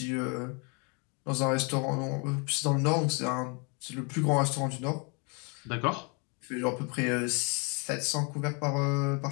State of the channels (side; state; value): right; quieter; 34.1 dB